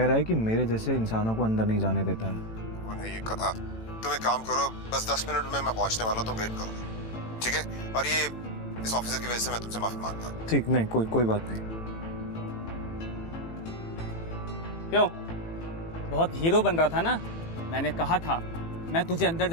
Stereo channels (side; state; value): right; late; 18 ms